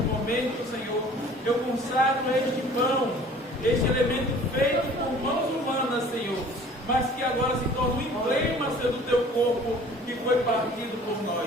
Senhor, eu consagro este pão, este elemento feito por mãos humanas, Senhor, mas que agora se torna um emblema, Senhor, do teu corpo que foi partido por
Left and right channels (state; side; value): normal; both; correlation 0.49